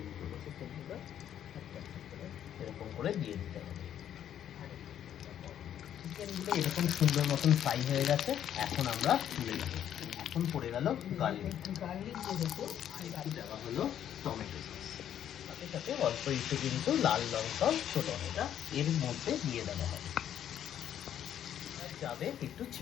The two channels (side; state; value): right; quieter; 10.2 dB